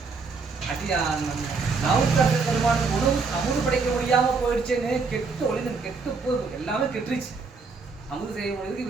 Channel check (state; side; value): quieter; left; 4.6 dB